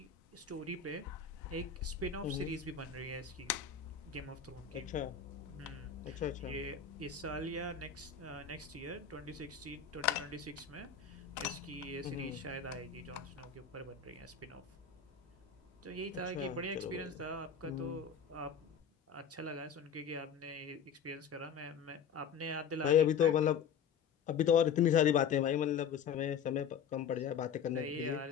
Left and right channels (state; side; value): quieter; right; 7.1 dB